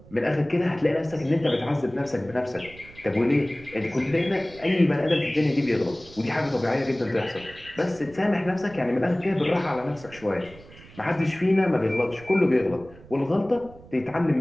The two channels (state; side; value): noise; right; rumble, 21 dB below the sound